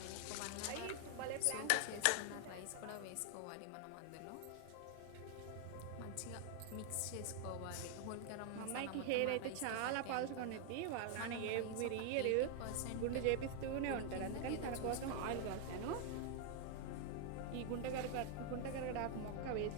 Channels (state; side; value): different; both; correlation 0.00